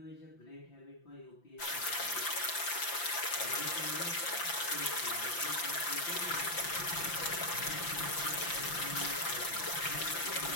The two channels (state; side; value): late; right; 5.8 ms